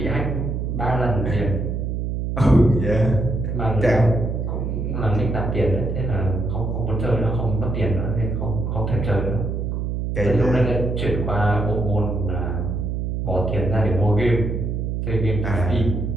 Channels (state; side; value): noise; right; hum, 2 dB below the sound